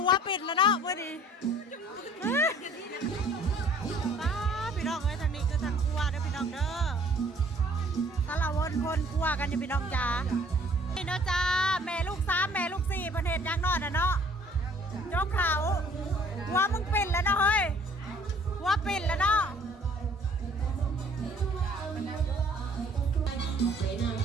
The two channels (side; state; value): both; normal; correlation 0.56